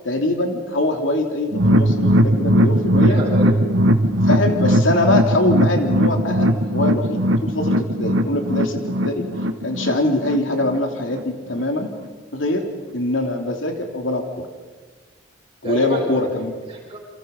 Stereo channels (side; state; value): both; normal; correlation 0.45